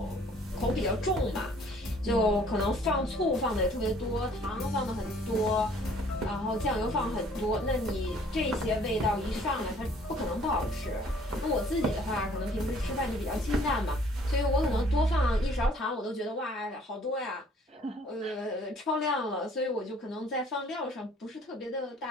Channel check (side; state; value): both; normal; correlation 0.57